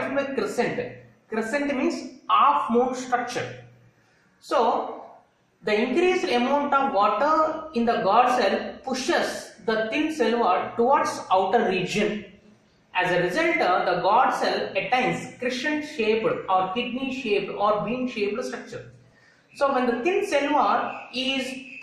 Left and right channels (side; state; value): both; identical; correlation 1.00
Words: is meant by crescent? Crescent means half moon structure. So, the increased amount of water in the guard cell pushes the thin cell wall towards outer region. As a result, the guard cell attains crescent-shaped or kidney-shaped or bean-shaped structure. So, when the thin cell wall is